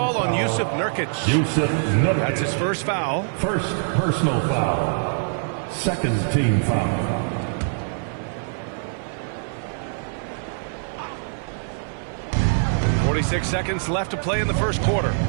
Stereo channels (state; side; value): silent; left; 56 dB below the other